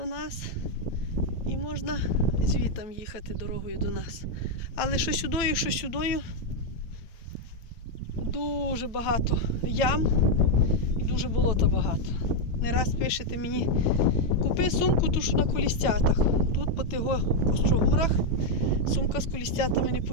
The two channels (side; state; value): right; late; 8.8 ms